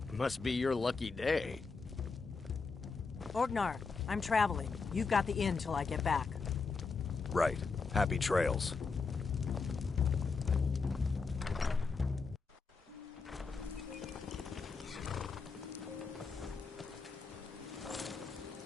Must be your lucky day. Orgnar, I'm traveling. You've got the inn till I get back. Right. Happy trails.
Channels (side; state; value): right; quieter; 4.6 dB